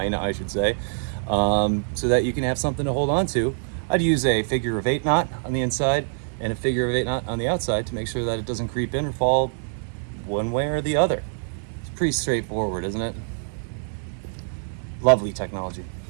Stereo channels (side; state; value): left; silent; digital silence